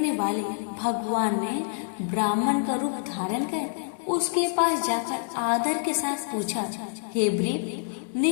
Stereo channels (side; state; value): right; silent; 60 dB below the other